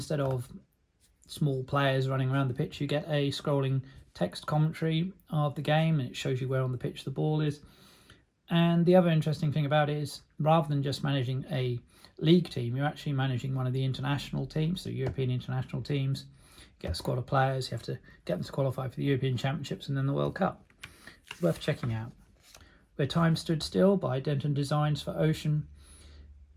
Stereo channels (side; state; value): both; identical; correlation 1.00